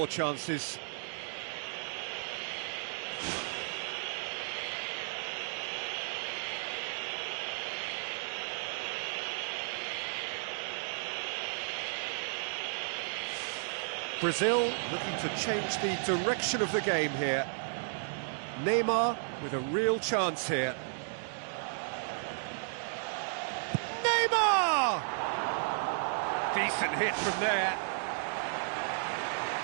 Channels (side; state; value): left; silent; digital silence